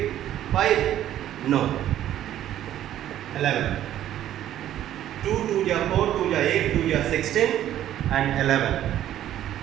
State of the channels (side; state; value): left; quieter; 12.0 dB